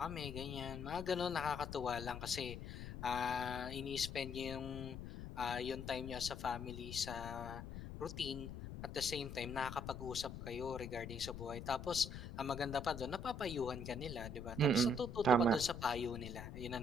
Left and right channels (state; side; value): noise; left; rumble, 8 dB below the sound